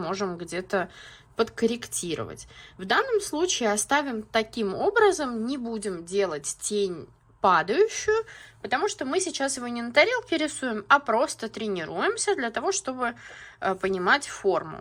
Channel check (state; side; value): identical; both; correlation 1.00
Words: где-то подкорректировать. В данном случае оставим таким образом, не будем делать тень падающую, потому что мы сейчас его не на тарелке рисуем, а просто тренируемся для того, чтобы понимать форму,